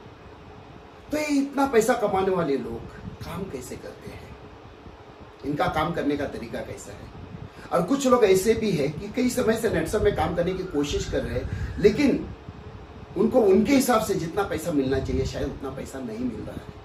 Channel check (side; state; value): both; identical; correlation 1.00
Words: तो ये इतना पैसा कमाने वाले लोग काम कैसे करते हैं? इनका काम करने का तरीका कैसा है? और कुछ लोग ऐसे भी हैं कि कई समय से नेट्सअप में काम करने की कोशिश कर रहे हैं, लेकिन उनको उनके हिसाब से जितना पैसा मिलना चाहिए शायद उतना पैसा नहीं मिल रहा